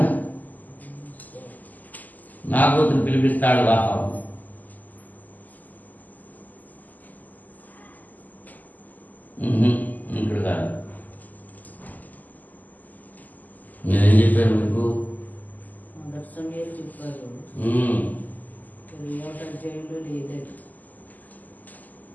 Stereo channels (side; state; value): right; late; 0.082 ms